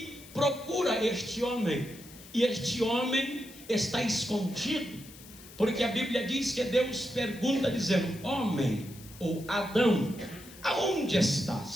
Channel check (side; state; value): left; noise; hiss, 19 dB below the sound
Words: procura este homem. E este homem está escondido, porque a Bíblia diz que Deus pergunta dizendo: homem, ou Adão, aonde